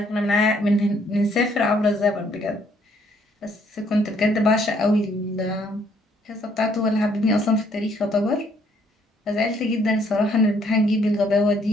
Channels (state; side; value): normal; both; correlation 0.66